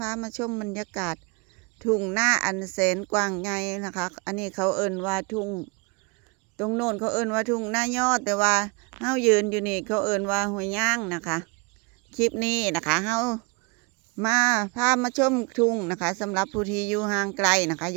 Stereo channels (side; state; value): left; quieter; 29.8 dB